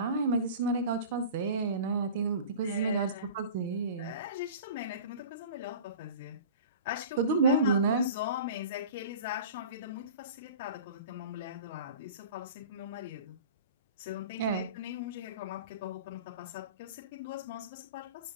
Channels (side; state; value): both; inverted; correlation -0.38